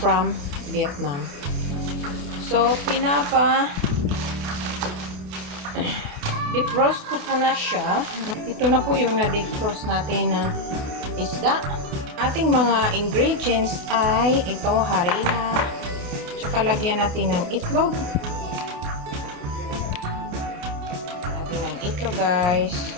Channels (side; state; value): left; late; 28 ms